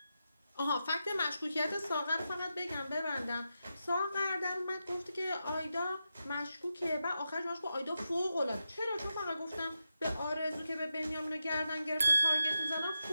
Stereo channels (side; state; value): both; inverted; correlation -0.88